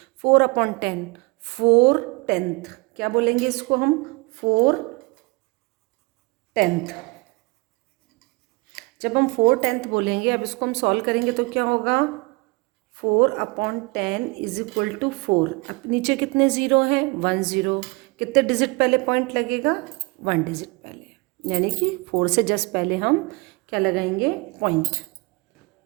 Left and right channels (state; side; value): quieter; left; 26.5 dB